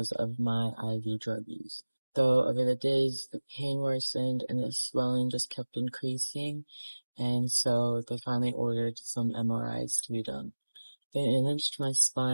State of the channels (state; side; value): inverted; both; correlation -1.00